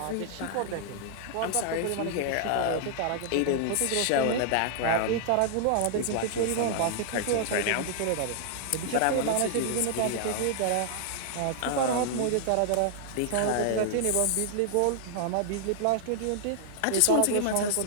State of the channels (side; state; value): both; different; correlation -0.01